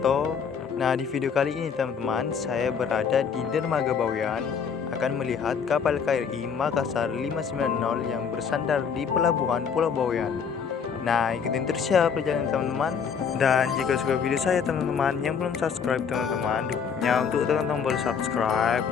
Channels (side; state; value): right; quieter; 6.6 dB